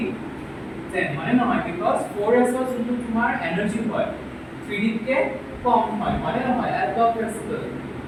10 মানে নহয় because 4s ৰ যোনটো তোমাৰ এনাৰ্জি হয় 3d কে কম হয় মানে নহয় এলব প্ৰিন্সিপল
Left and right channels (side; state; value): both; identical; correlation 1.00